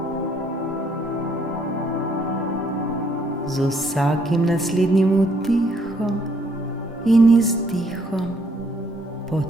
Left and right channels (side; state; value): both; normal; correlation 0.68